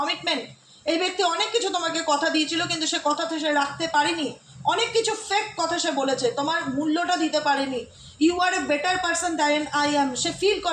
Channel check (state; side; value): identical; both; correlation 1.00